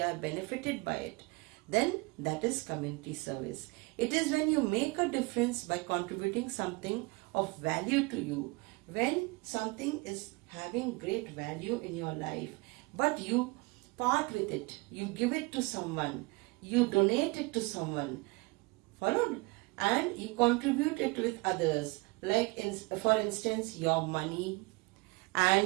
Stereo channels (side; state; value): left; quieter; 26.2 dB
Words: are benefited by it, then that is community service. It is when you make a difference by contributing something of value to you. When something is having great value in your life, but you part with it, you give it to someone, you donate it to someone, followed, and you contribute it with others, like for instance your money